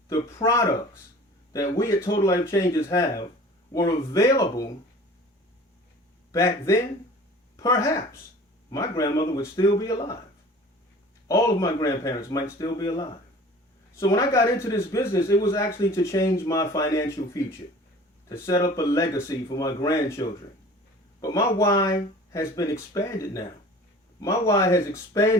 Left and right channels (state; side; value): normal; both; correlation 0.44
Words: the products that we at Total Life Changes have were available back then, perhaps my grandmother would still be alive. All of my grandparents might still be alive. So when I got into this business, it was actually to change my financial future, to set up a legacy for my grandchildren. But my why has been expanded now. My why has